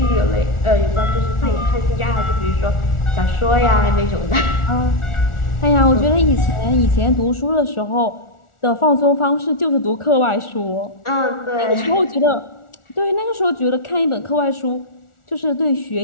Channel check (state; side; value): late; right; 1.4 ms